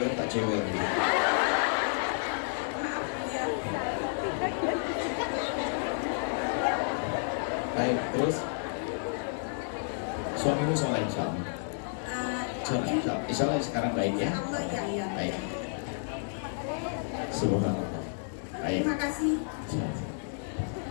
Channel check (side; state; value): right; silent; digital silence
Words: tak cewek. Maaf ya. Baik, terus suamimu soleh insya Allah. Insya Allah sekarang baik ya. Allah ya ya. Baik. Subhanallah. Baik. Terima kasih.